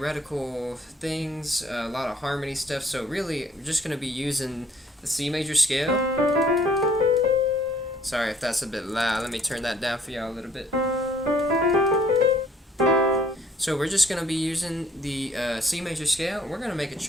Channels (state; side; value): normal; both; correlation 0.60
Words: things, a lot of harmony stuff, so really we're just going to be using the C major scale. Sorry if that's a bit loud, let me turn that down for y'all a little bit. So we're just going to be using the C major scale, and we're going to make a